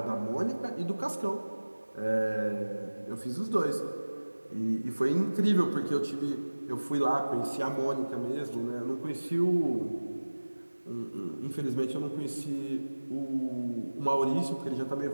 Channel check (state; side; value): inverted; both; correlation -1.00